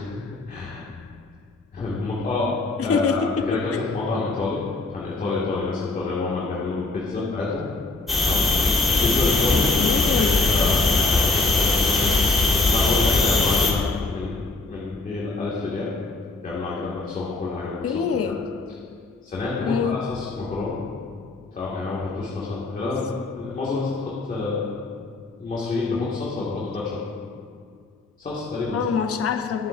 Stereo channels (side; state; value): right; quieter; 3.4 dB